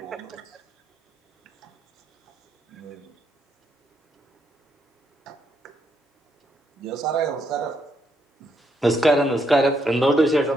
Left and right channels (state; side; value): normal; both; correlation 0.76